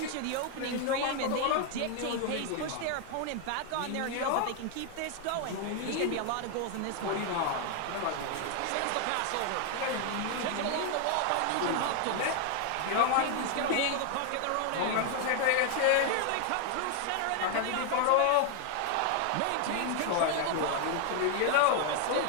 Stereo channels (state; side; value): different; both; correlation 0.00